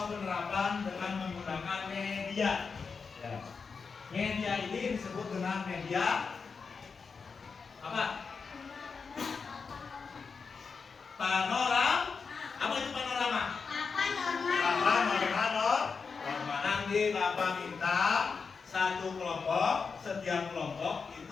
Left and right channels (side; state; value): right; quieter; 5.2 dB